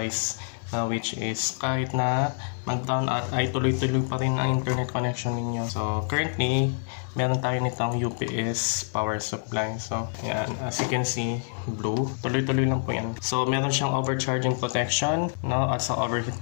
na which is kahit na mag-down out ay tuloy-tuloy pa rin ang internet connection ninyo. So currently, meron tayo nitong UPS power supply. So yan, as you can see, blue, tuloy-tuloy lang po yan. So meron siyang overcharging protection, no, at sa overheat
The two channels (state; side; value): silent; right; digital silence